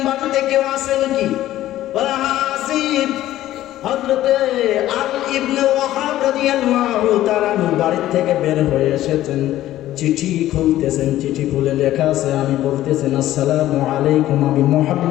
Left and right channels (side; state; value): right; quieter; 14.0 dB